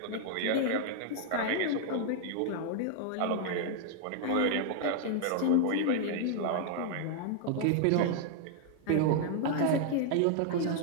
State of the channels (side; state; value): both; different; correlation -0.01